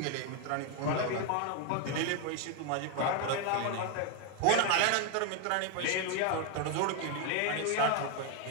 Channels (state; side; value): different; both; correlation 0.01